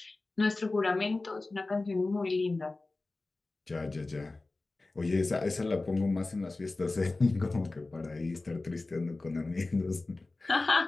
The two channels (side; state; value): right; quieter; 3.3 dB